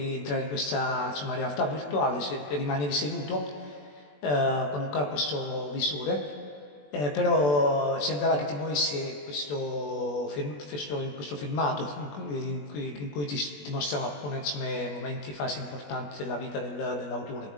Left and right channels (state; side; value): late; right; 21 ms